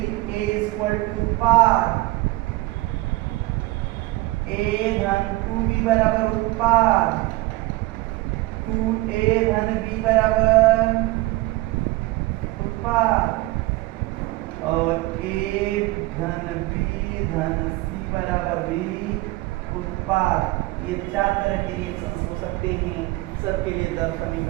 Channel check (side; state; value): left; quieter; 20.2 dB